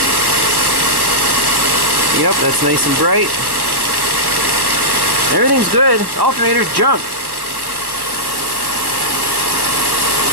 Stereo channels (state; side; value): late; left; 1.1 ms